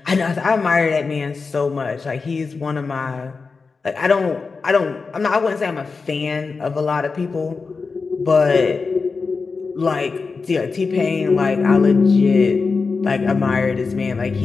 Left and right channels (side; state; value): right; quieter; 4.5 dB